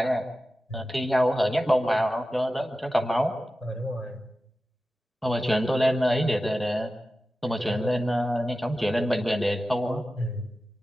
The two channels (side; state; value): both; normal; correlation 0.93